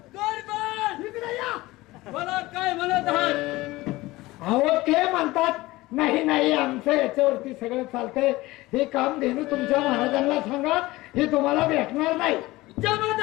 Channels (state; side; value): quieter; right; 19.4 dB